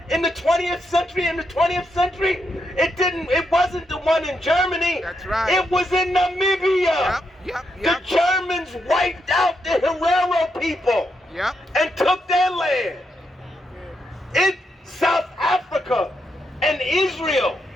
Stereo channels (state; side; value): normal; both; correlation 0.81